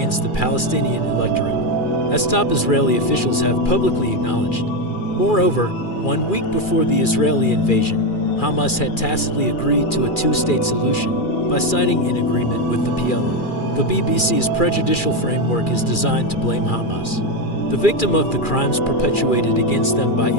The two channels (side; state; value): right; late; 2.4 ms